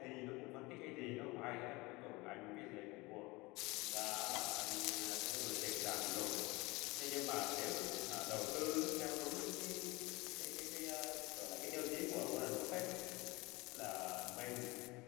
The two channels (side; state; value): right; quieter; 23.3 dB